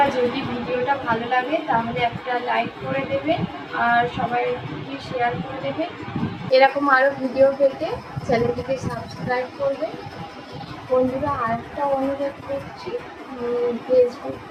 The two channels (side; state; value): both; identical; correlation 1.00